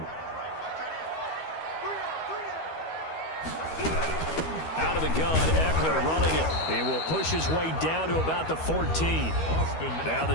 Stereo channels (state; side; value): late; right; 13 ms